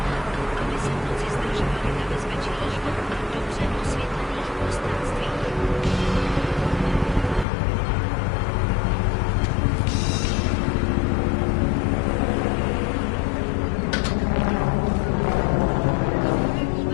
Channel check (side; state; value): right; drops out; at 7.5 s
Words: aby se v noci zdržovali na bezpečných, dobře osvětlených prostranstvích.